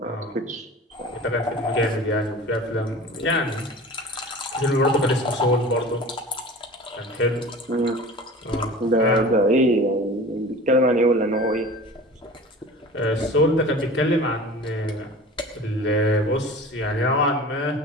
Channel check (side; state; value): both; normal; correlation 0.38